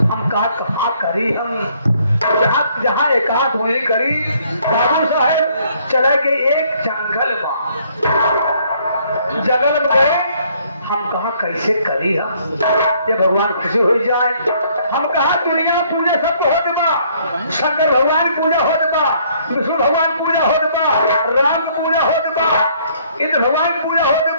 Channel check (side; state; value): both; inverted; correlation -0.64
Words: हम कहा करी, हम जहाँ एकांत हुई करी। बाबू साहेब चला के एक जंगल में गए। हम कहा कैसे करी हम, ये भगवान खुशी हो जाए। हम कहा दुनिया पूजा सब हो दबा, शंकर भगवान पूजा हो दबा, विष्णु भगवान पूजा हो दबा, राम पूजा हो दबा, इंद्र भगवान पूजा हो